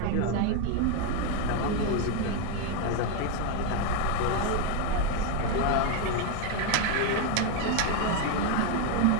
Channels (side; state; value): both; different; correlation 0.01